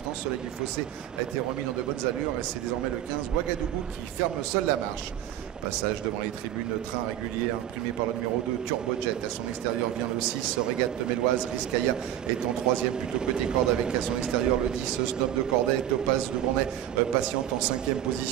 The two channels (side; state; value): left; quieter; 11.6 dB